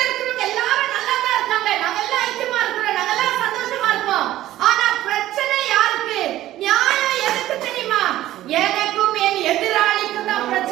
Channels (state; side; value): quieter; left; 14.4 dB